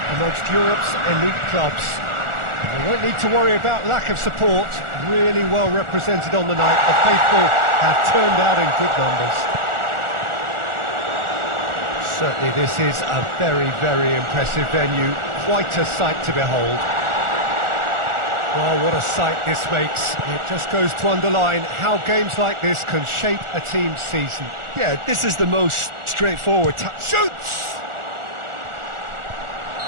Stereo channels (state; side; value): late; left; 1.4 ms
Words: amongst Europe's elite clubs. They won't need to worry about lack of support. Really well represented on the night. The faithful have turned out in good numbers. Certainly this is a very, very impressive venue. Quite a sight to behold. Well, what a sight this makes. It just goes to underline how games like this can shape a team's season. Yeah, this is the most straightforward. Shoots!